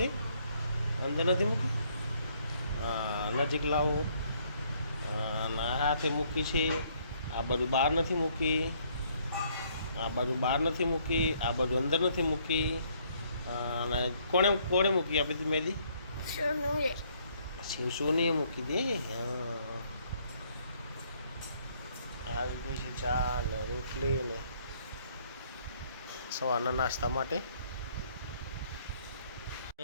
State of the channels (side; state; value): both; inverted; correlation -0.66